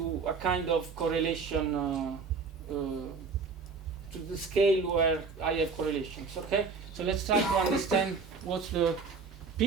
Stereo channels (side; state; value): left; quieter; 4.9 dB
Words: a kind of correlation to the scale where I have correlations. Okay? So let's try to understand what's the